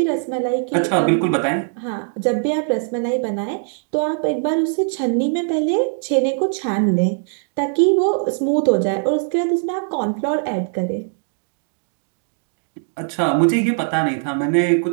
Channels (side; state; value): left; silent; digital silence